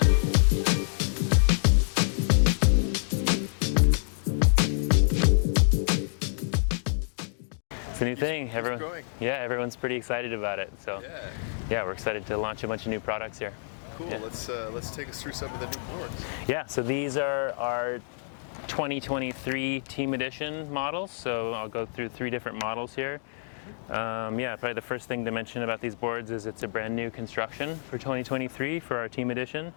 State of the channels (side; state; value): right; silent; digital silence